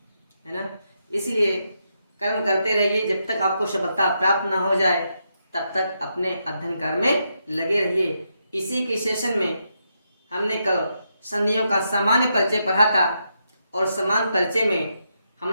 है ना। इसलिए कर्म करते रहिए, जब तक आपको सफलता प्राप्त न हो जाए तब तक अपने अध्ययन कार्य में लगे रहिए। इसी के सेशन में हमने कल संधियों का सामान्य परिचय पढ़ा था और समान परिचय में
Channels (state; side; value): inverted; both; correlation -0.82